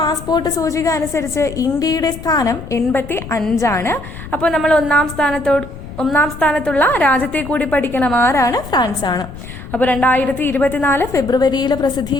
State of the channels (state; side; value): noise; left; rumble, 12 dB below the sound